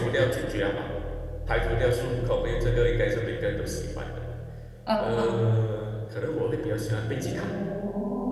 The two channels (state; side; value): identical; both; correlation 1.00